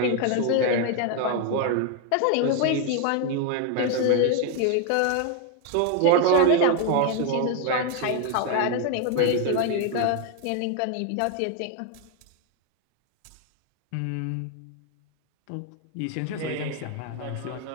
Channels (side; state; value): both; different; correlation 0.01